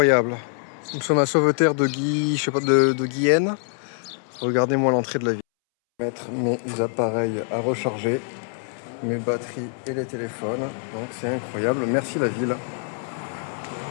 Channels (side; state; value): right; silent; 62 dB below the other